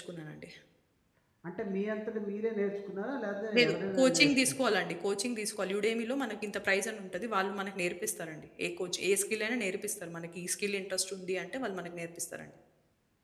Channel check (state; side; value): identical; both; correlation 1.00